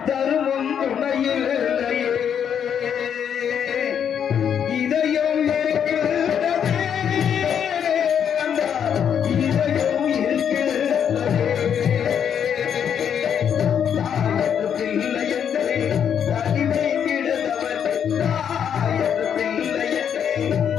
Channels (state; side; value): quieter; right; 8.3 dB